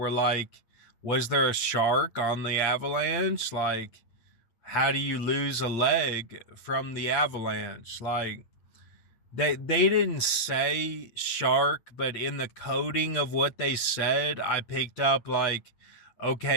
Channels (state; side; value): late; right; 8.7 ms